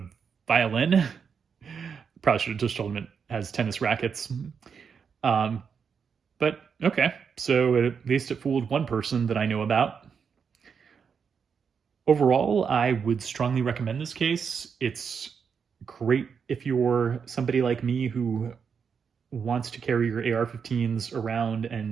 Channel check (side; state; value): left; quieter; 6.4 dB